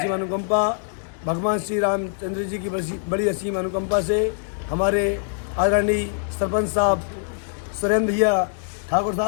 अनुकंपा, भगवान श्री रामचंद्र जी की बड़ी असीम अनुकंपा से हमारे आदरणीय सरपंच साहब सुरेंद्र भैया ठाकुर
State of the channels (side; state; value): right; silent; digital silence